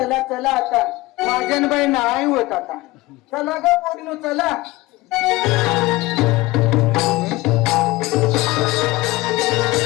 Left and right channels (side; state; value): right; quieter; 20.2 dB